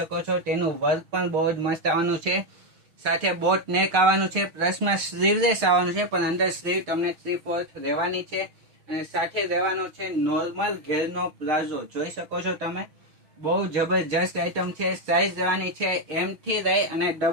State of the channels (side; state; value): left; late; 6.2 ms